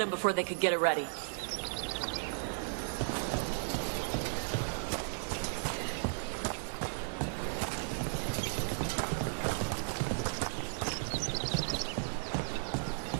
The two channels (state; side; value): silent; left; digital silence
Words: before they could get it ready.